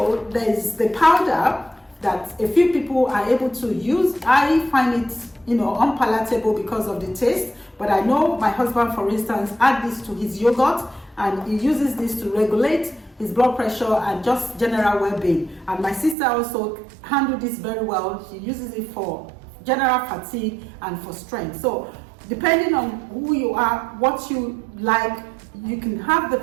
there's the powder that a few people are able to use. I find it, unpalatable because of the taste, but I know my husband, for instance, add this to his yogurt, and he uses this to regulate his blood pressure and just general well-being. And my sister also handled this very well. She uses it for general fatigue and for strength. So depending on who you are, what you like, you can have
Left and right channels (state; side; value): drops out; left; at 16.2 s